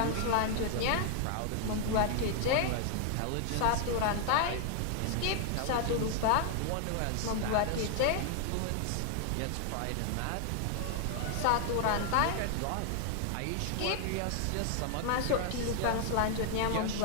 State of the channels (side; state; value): both; different; correlation 0.00